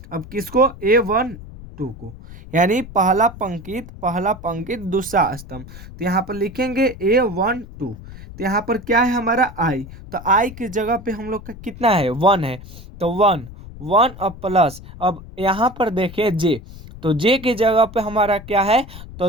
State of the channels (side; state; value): left; noise; rumble, 15 dB below the sound